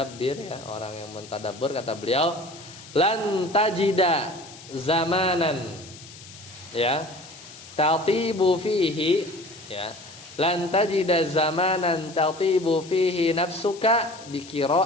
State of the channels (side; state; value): left; noise; hiss, 18 dB below the sound